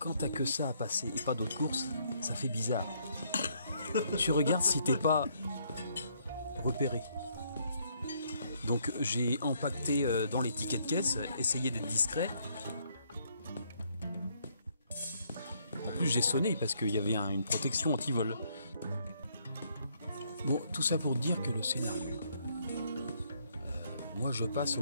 t'as que ça à passer et pas d'autres courses, ça fait bizarre. Tu regardes si t'es pas repéré. Donc j'ai empaqueté dans les tickets de caisse, essayé d'être discret. En plus j'ai sonné parce qu'il y avait une protection anti-vol. Bon, tout ça pour dire que le scénario... moi je passe au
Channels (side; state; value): both; inverted; correlation -0.70